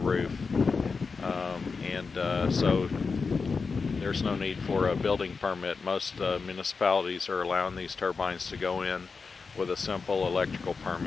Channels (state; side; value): quieter; right; 4.8 dB